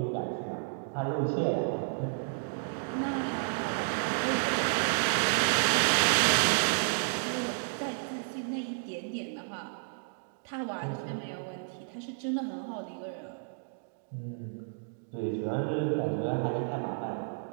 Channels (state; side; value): silent; left; digital silence